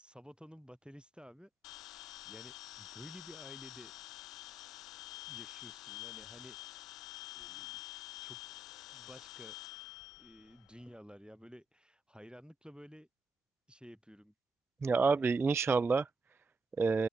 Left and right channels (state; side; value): quieter; left; 3.4 dB